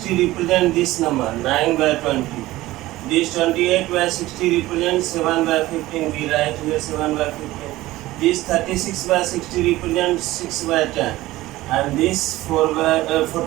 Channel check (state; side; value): quieter; left; 17.3 dB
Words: represent this number, 9 by 20. This 28 by 60 represents 7 by 15. We write here 7 by 15. This 36 by 60 represents 6 by 10. And this